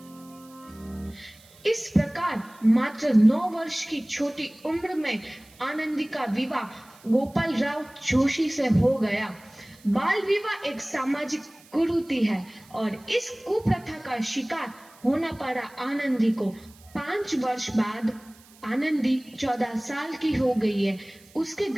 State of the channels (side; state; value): right; noise; hiss, 26 dB below the sound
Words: इस प्रकार मात्र 9 वर्ष की छोटी उम्र में आनंदी का विवाह गोपाल राव जोशी से हो गया। बाल विवाह एक सामाजिक कुरीति है और इस कुप्रथा का शिकार होना पड़ा आनंदी को। 5 वर्ष बाद आनंदी 14 साल की हो गई है। उसके